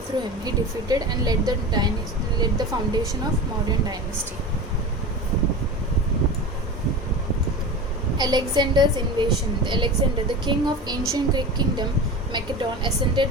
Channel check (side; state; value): both; normal; correlation 0.30